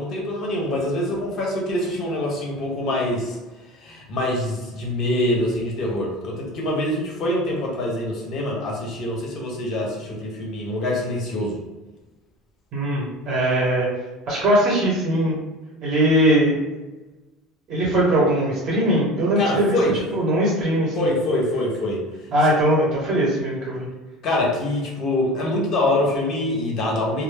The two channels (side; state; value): both; normal; correlation 0.35